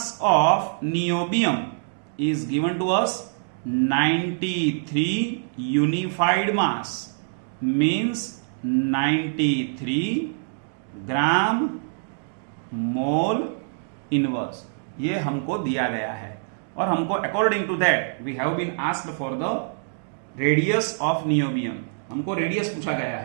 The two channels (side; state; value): left; silent; digital silence